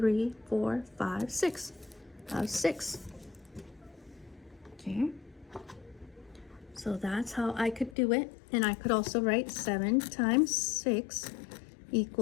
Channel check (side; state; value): right; drops out; at 8.0 s